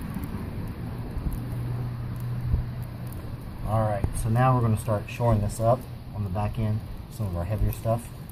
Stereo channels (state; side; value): identical; both; correlation 1.00